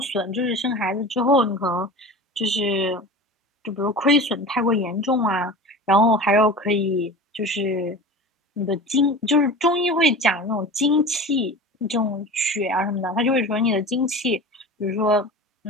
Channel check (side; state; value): both; normal; correlation 0.34